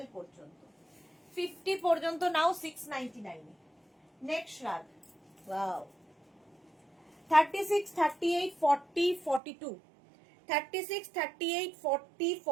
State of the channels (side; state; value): left; drops out; at 9.4 s